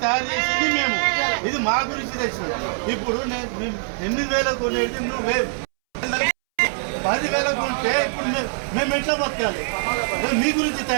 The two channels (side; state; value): left; silent; 64 dB below the other